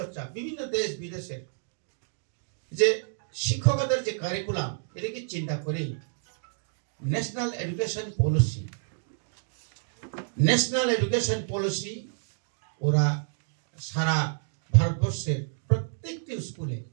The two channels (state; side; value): silent; left; digital silence